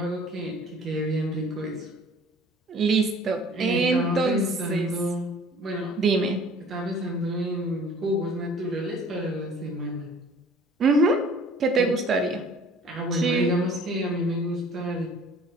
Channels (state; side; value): normal; both; correlation 0.51